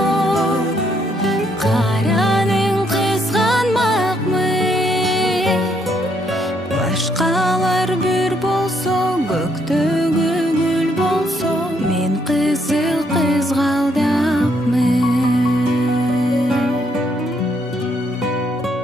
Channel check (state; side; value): normal; both; correlation 0.72